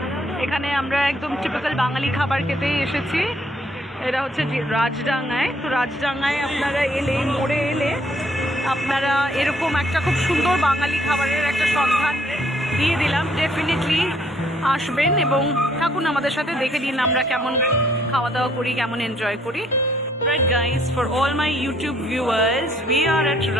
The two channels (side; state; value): both; normal; correlation 0.66